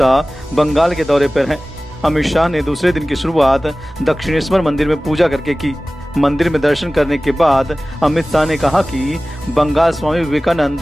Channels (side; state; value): both; normal; correlation 0.97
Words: बंगाल के दौरे पर हैं। अमित शाह ने दूसरे दिन की शुरुआत दक्षिणेश्वर मंदिर में पूजा करके की। मंदिर में दर्शन करने के बाद अमित शाह ने कहा कि बंगाल स्वामी